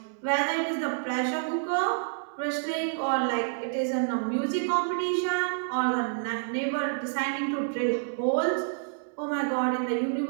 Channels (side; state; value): left; silent; digital silence